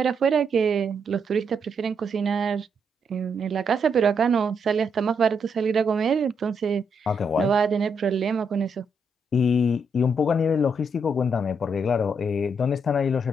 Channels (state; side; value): normal; both; correlation 0.77